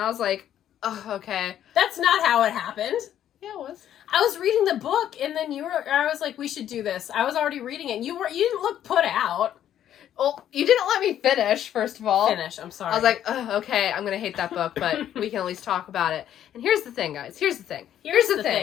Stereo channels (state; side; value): quieter; right; 10.9 dB